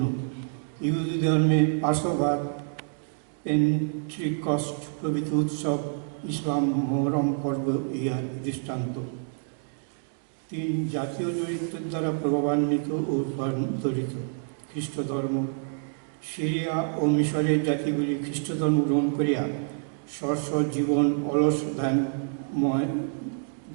ইহুদি ধর্মে পাশোভার, পেন্ট্রিকস্ট প্রভৃতি উৎসব, ইসলাম মোহরম পর্ব ইহার দৃষ্টান্ত। 3 জাতীয় চরিত্রের দ্বারা প্রভাবান্বিত ও রূপান্তরিত। খ্রিস্ট ধর্ম। সিরিয়া ও মিশরের জাতিগুলি খ্রিস্ট ধর্ম গ্রহণ করিয়া স্ব জীবন অলস ধ্যানময়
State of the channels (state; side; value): silent; left; digital silence